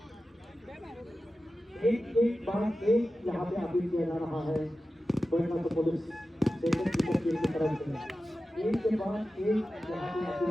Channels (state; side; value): normal; both; correlation 0.94